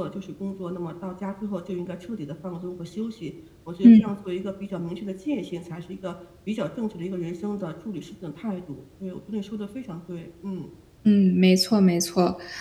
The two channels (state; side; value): identical; both; correlation 1.00